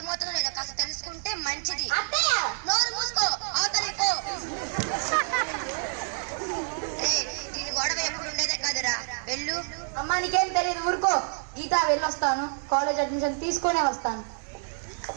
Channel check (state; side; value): silent; left; 59 dB below the other